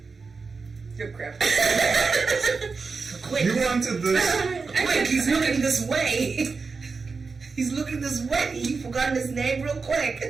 good crap. Quick. You wanted this. Quick, he's looking this way. He's looking this way. You forgotten his name real quick.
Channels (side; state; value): left; quieter; 4.6 dB